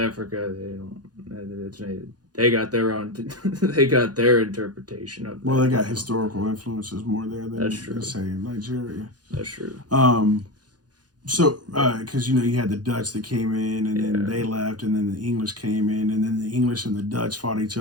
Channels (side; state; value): left; late; 0.69 ms